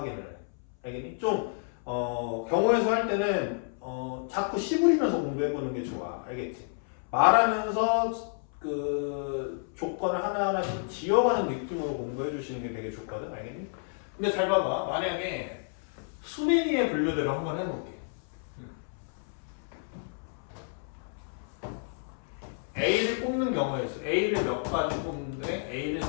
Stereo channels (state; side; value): silent; right; 58 dB below the other